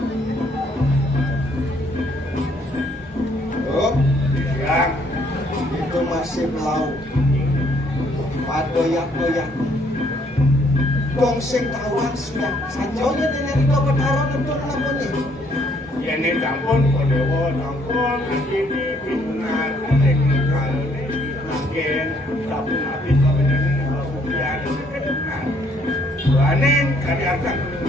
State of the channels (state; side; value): normal; both; correlation 0.67